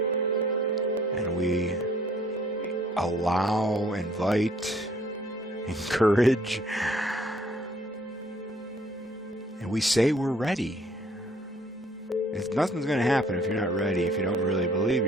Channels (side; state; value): both; normal; correlation 0.61